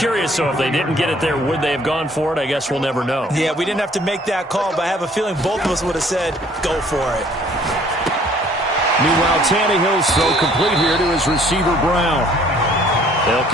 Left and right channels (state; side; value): normal; both; correlation 0.58